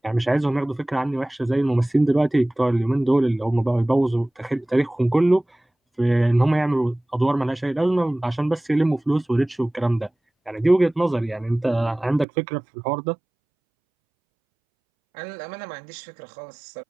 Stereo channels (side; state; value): left; drops out; at 12.2 s